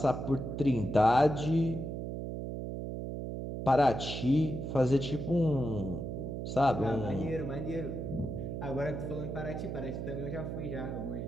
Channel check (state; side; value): noise; right; hum, 5 dB below the sound